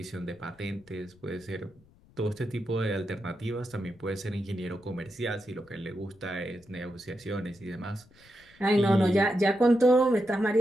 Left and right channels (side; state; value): left; noise; rumble, 28 dB below the sound